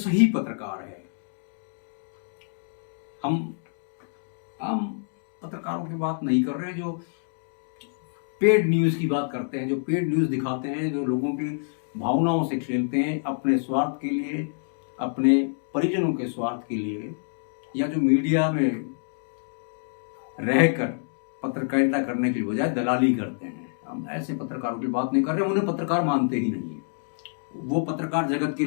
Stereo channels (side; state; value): right; silent; digital silence